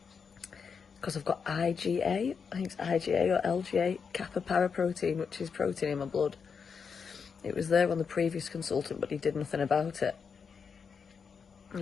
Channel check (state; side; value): quieter; right; 6.0 dB